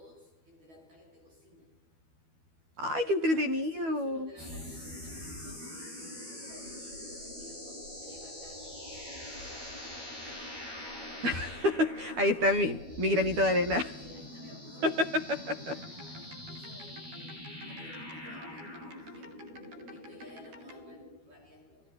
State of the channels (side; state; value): left; late; 12 ms